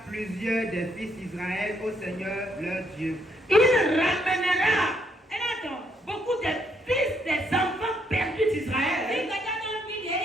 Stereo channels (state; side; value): normal; both; correlation 0.73